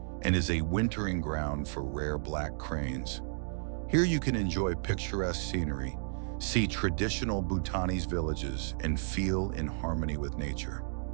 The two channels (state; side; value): silent; left; digital silence